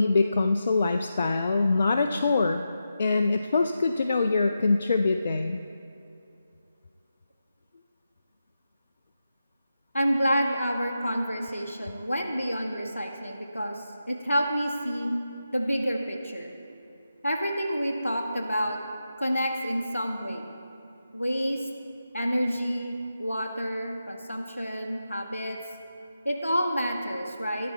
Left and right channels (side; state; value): both; inverted; correlation -0.89